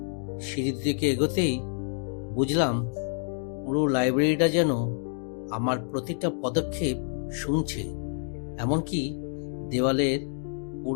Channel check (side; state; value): right; silent; digital silence